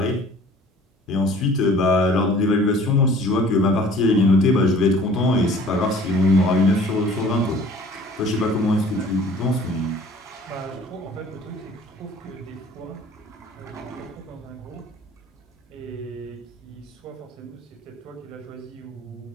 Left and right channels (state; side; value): normal; both; correlation 0.50